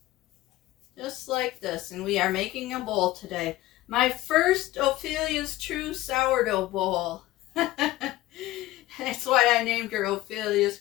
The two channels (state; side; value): quieter; right; 16.7 dB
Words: Just like this. And we are making a bowl today. My first Ophelia's True Sourdough Bowl. That's why I named her Ophelia's